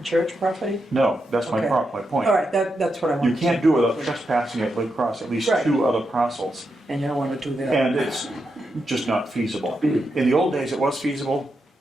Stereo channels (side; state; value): both; normal; correlation 0.85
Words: church property? No, that's my Okay. my point. All right, that's what I want. You can't do it without trespassing it across at least Right. 2 other parcels. And you don't want to do that. And it's just not feasible. In the old days, it was feasible,